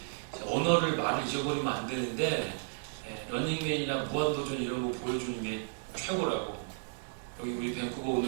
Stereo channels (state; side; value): silent; left; digital silence